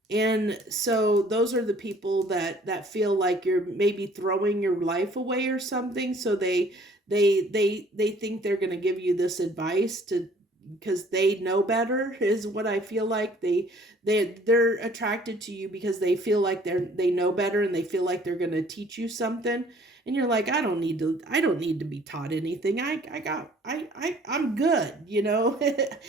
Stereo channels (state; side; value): normal; both; correlation 0.56